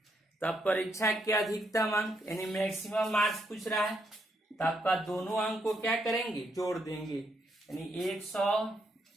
तब परीक्षा के अधिकतम अंक यानी मैक्सिमम मार्क्स पूछ रहा है। तो आपका दोनों अंक को क्या करेंगे, जोड़ देंगे। यानी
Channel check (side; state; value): both; normal; correlation 0.76